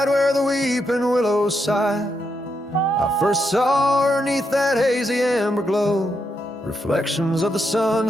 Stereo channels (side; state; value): both; normal; correlation 0.81